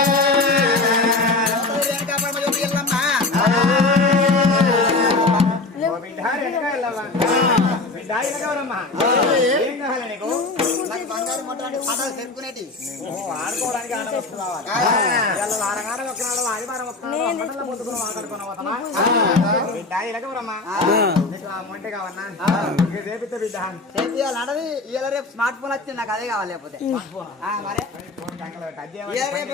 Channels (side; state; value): right; quieter; 3.3 dB